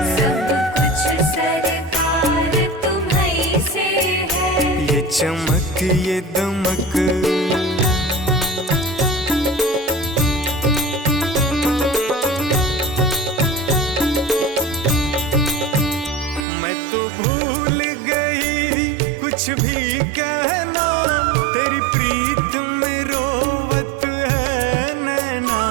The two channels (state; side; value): drops out; left; at 16.4 s